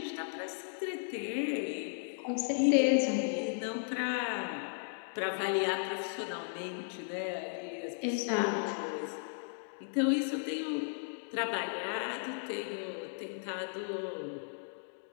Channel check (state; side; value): silent; right; digital silence